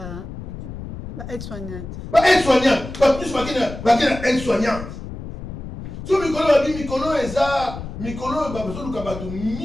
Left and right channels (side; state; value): left; noise; rumble, 10 dB below the sound